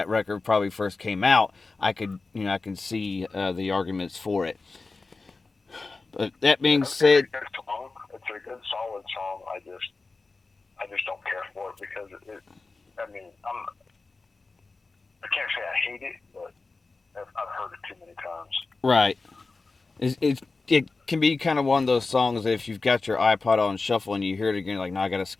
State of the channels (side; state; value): right; quieter; 3.8 dB